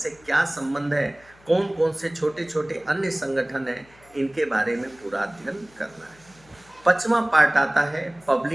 क्या संबंध है, कौन कौन से छोटे छोटे अन्य संगठन हैं, इनके बारे में पूरा अध्ययन करना है। 5वां पार्ट आता है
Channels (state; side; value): noise; left; hum, 28 dB below the sound